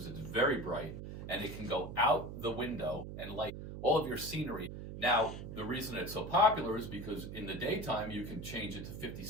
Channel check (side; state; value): right; noise; hum, 9 dB below the sound